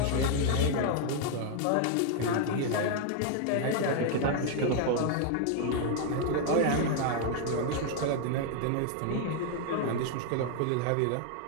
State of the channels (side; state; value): both; different; correlation 0.00